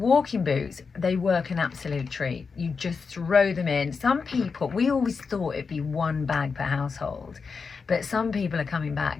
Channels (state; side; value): quieter; right; 5.1 dB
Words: boots, they work an absolute treat. You just throw them in. Some people, we always thought it'd be 1 bag per household, but some people are coming